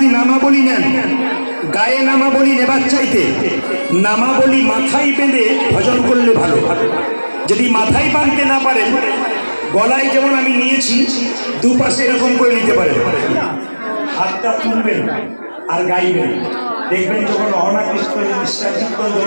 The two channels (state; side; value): inverted; both; correlation -1.00